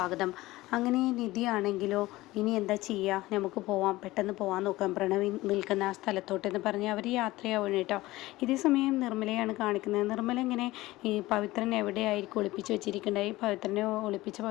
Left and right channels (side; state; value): right; quieter; 18.4 dB